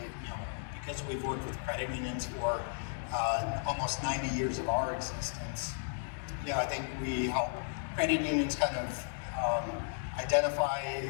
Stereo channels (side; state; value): right; silent; digital silence